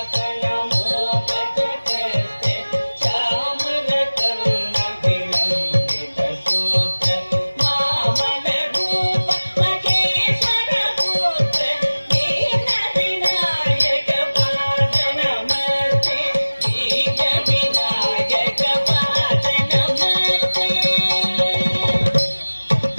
ಮೋದಕ ಕಷ್ಟ ಚಾಮರ ಕರ್ಣ ವಿಲಂಬಿತ ಸೂತ್ರ ವಾಮನ ರೂಪ ಮಹೇಶ್ವರ ಪುತ್ರ ದೀನ ವಿನಾಯಕ ಪಾದ ನಮಸ್ತೆ ದೀನ ವಿನಾಯಕ ಪಾದ ನಮಸ್ತೆ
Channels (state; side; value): inverted; both; correlation -1.00